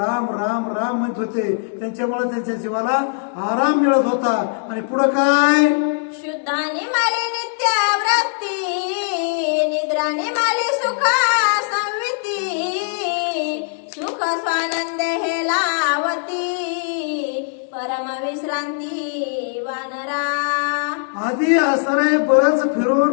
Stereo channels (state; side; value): silent; right; digital silence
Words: राम राम म्हणत होते. त्यांच्यामुळे त्यांच्या जीवाला आराम मिळत होता. आणि पुढं काय, शुद्धाने माले नित्यावृत्ती, निद्राने माले सुखा संविती, सुख स्वानंद हे लावती, परम विश्रांती वानरा. आधी असणारे बरंच